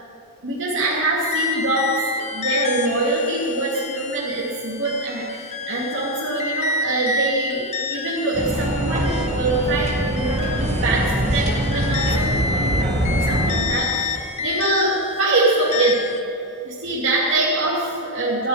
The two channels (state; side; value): normal; both; correlation 0.08